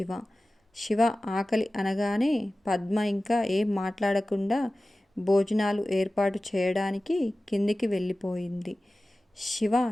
శివ ఆకలి అనగానే పద్మ ఇంకా ఏం మాట్లాడకుండా భోజనాలు ఏర్పాటు చేయడానికి కిందికి వెళ్ళిపోయింది. శివ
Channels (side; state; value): both; normal; correlation 0.96